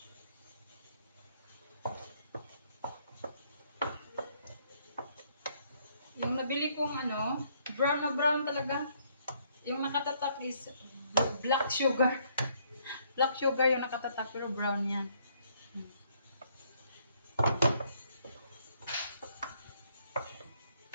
Yung nabili kong ano, brown na brown talaga. Yung nakatatak is black sugar. Black sugar yung nakatatak pero brown yan.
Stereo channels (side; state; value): both; inverted; correlation -0.68